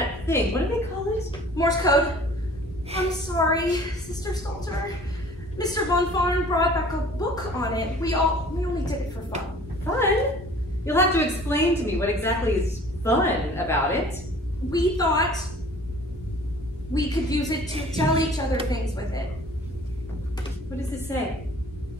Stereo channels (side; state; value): both; normal; correlation 0.49